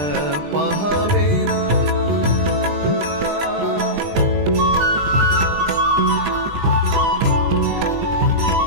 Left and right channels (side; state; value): left; late; 20 ms